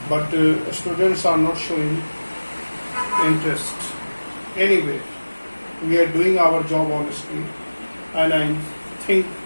but students are not showing interest. Anyway, we are doing our job honestly, and I think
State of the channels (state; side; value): inverted; both; correlation -1.00